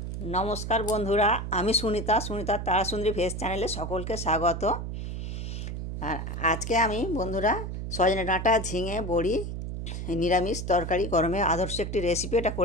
नमस्कार बंधुरा आमी सुनीता सुनीता तारासुंदरी भेज चैनले सकल के स्वागत। और आज के आमी बंधुरा सजने डाँटा झिंगे बड़ी निरामिष तरकारी गरमे आदर्श एक रेसिपि एटा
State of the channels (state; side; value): noise; right; hum, 5 dB below the sound